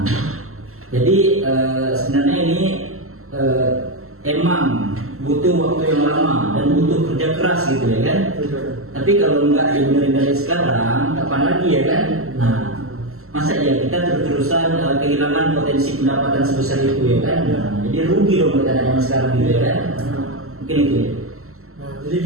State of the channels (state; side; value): late; left; 0.63 ms